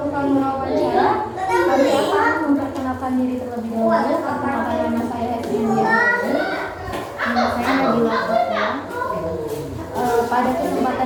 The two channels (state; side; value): identical; both; correlation 1.00